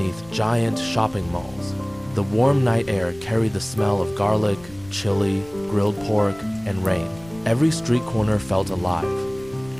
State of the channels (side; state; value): left; noise; rumble, 21 dB below the sound